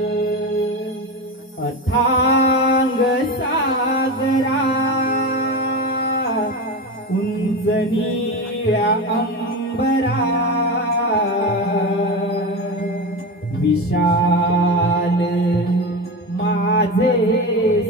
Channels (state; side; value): normal; both; correlation 0.22